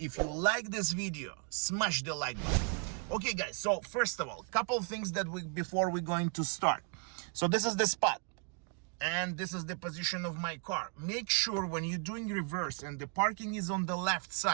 you like this video, smash the like button. Okay, guys, so first of all, couple things that before we're going to start. So this is the spot and this is the position of my car. Make sure when you're doing reverse and the parking is on the left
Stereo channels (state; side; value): quieter; left; 36.9 dB